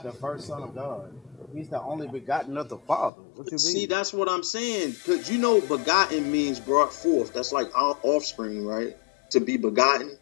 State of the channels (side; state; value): right; drops out; at 3.1 s